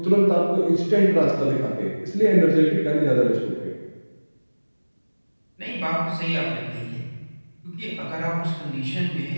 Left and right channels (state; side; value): inverted; both; correlation -1.00